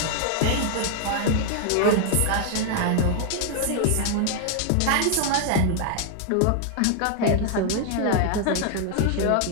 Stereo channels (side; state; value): both; different; correlation 0.00